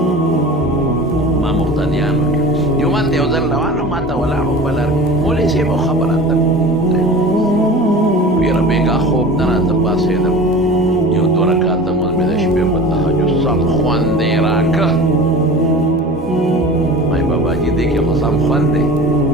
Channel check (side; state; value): both; normal; correlation 0.37